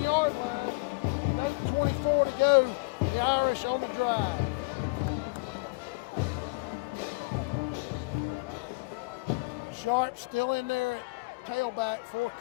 line with 8:24 to go. The Irish on the drive. Sharp still in there at tailback for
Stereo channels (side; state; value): right; quieter; 27.5 dB